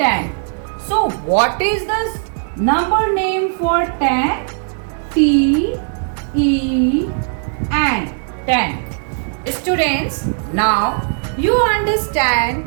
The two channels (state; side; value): silent; left; digital silence